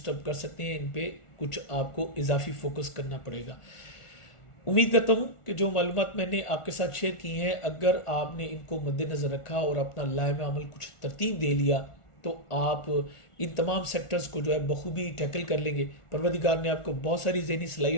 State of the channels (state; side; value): late; right; 1.4 ms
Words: कर सकते हैं, इन पे कुछ आपको इजाफी फोकस करना पड़ेगा। उम्मीद करता हूँ कि जो मालूमात मैंने आपके साथ शेयर की हैं, अगर आपने इनको मद्देनज़र रखा और अपना लाइम अमल कुछ तरतीब दे लिया तो आप इन तमाम सेक्टर्स को जो है बखूबी टैकल कर लेंगे। परवरदिगार ने आपको बहुत सारी ज़हनी